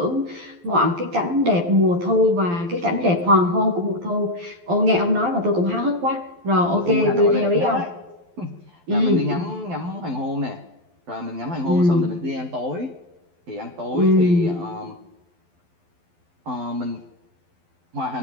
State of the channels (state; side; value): late; left; 12 ms